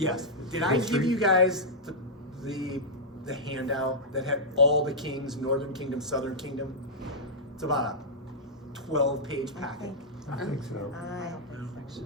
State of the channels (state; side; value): normal; both; correlation -0.09